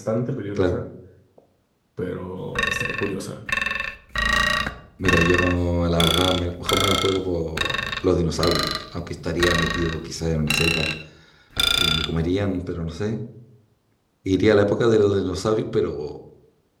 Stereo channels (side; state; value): both; identical; correlation 1.00